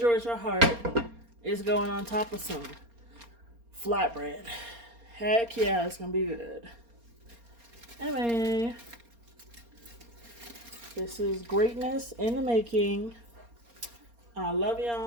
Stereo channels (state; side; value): late; left; 4.3 ms